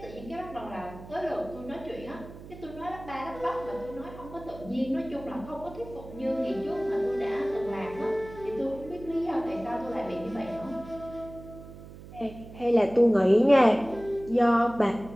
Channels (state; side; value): noise; right; hum, 16 dB below the sound